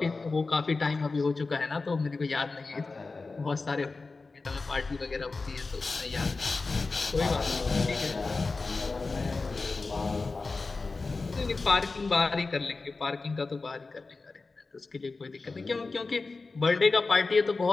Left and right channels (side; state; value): right; quieter; 3.9 dB